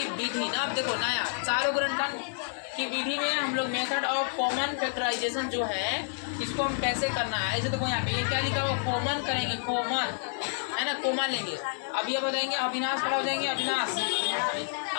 विधि ना। अब देखो नया सारोगुणनखंड की विधि में हम लोग मेथड ऑफ कॉमन फैक्टराइजेशन जो है, इसको हम कैसे करना है। ऐसे देखो यहाँ पे ये क्या लिखा हुआ, कॉमन करेंगे, कॉमन है ना, कॉमन लेंगे। अब ये बताएंगे अविनाश खड़ा हो जाएंगे,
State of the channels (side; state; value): right; silent; digital silence